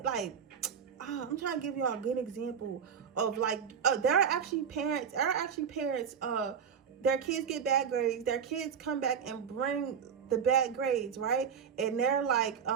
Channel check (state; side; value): quieter; left; 7.2 dB